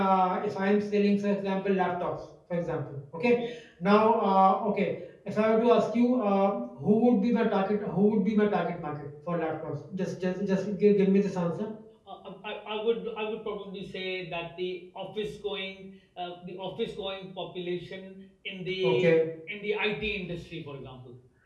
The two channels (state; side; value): identical; both; correlation 1.00